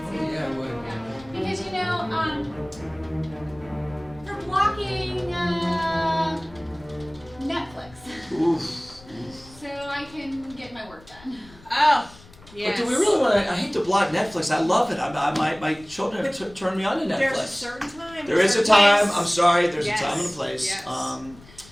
yeah, I would. Because they're blocking Netflix, Oof. so I can get my work done. Oh, But do we really want to? I hate to block Netflix. I love it. My children have turned me on to Netflix. There's a certain time. There is a certain time. place. I'm sorry. There's Yes, a time and a place. yes.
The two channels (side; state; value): left; noise; rumble, 23 dB below the sound